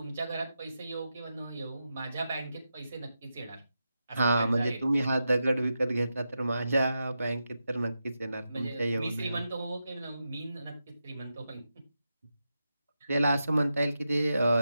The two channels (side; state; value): both; inverted; correlation -0.89